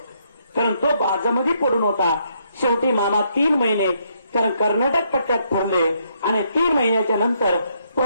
कारण तो बाजामध्ये पडून होता. शेवटी मामा 3 महिने कारण कर्नाटक पट्ट्यात फिरले आणि 3 महिन्याच्या नंतर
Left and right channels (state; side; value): inverted; both; correlation -0.73